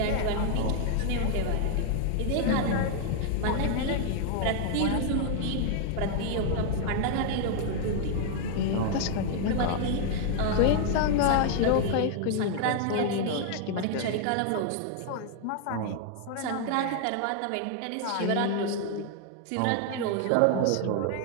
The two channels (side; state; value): both; different; correlation 0.00